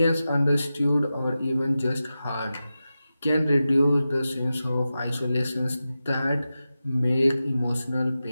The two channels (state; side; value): inverted; both; correlation -0.93